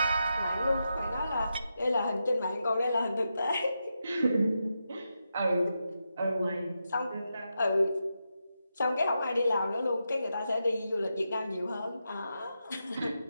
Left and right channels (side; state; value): both; inverted; correlation -0.87